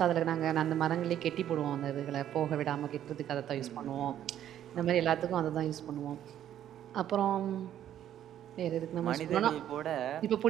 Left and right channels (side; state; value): left; quieter; 11.1 dB